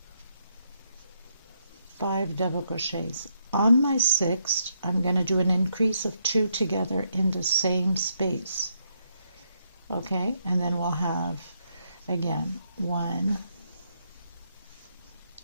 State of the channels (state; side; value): inverted; both; correlation -0.77